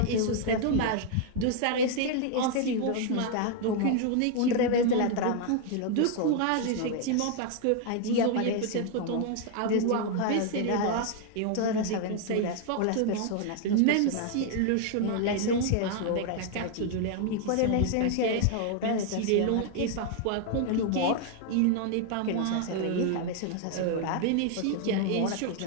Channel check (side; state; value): both; different; correlation 0.00